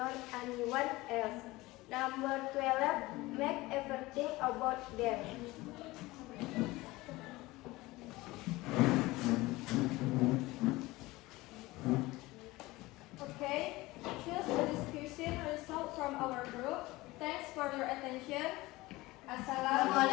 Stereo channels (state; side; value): quieter; right; 20.2 dB